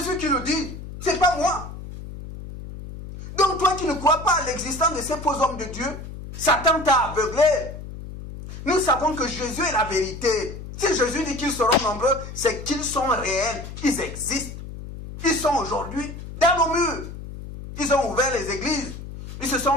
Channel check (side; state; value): left; noise; hum, 11 dB below the sound